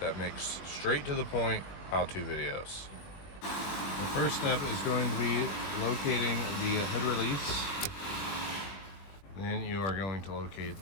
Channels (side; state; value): right; late; 21 ms